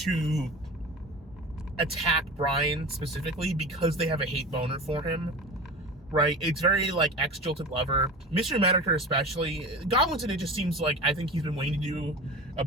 attack Bryan specifically because they have a hate boner for him. Right, it's very like ex-jilted lover. Mr. Medicare especially. Goblinson, it just seems like I think he's been waiting to do a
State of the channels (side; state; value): both; normal; correlation 0.33